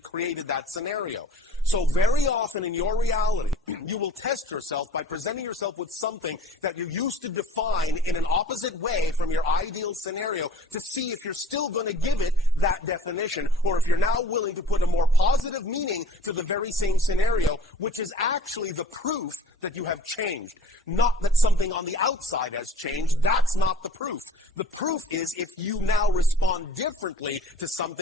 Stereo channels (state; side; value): normal; both; correlation 0.48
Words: created that scenario. So very often in your reality, you will test yourself by presenting yourself with something that you used to define in an opposite way from your ideal scenario to see if you're still going to give it that definition or if you're now willing to put a more positive meaning to the very same scenario, which is actually the proof that you have changed. Not that something on the outside has changed. That's not the proof. The proof is if you now respond differently to